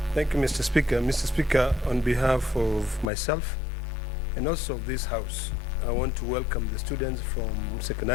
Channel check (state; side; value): drops out; right; at 3.1 s